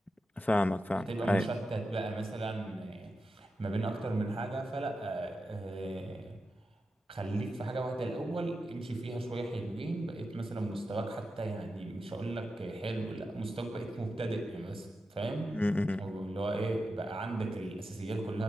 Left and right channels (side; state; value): both; normal; correlation 0.90